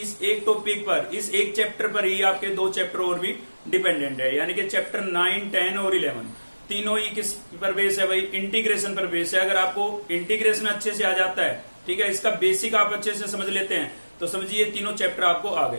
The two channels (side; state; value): both; inverted; correlation -1.00